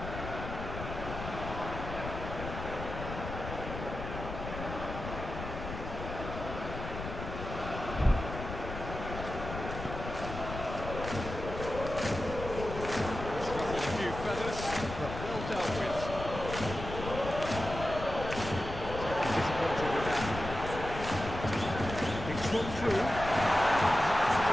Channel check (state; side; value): noise; left; rumble, 7 dB below the sound